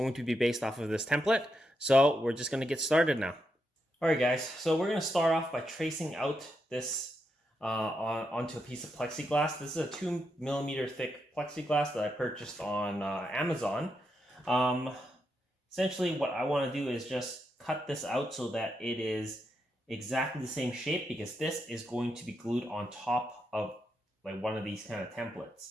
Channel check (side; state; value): both; normal; correlation 0.83